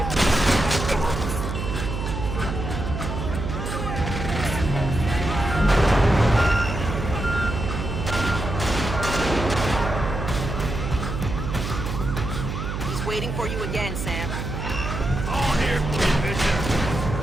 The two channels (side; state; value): right; noise; hum, 4 dB below the sound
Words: He's waiting for you again, Sam. All here for you, Bishop.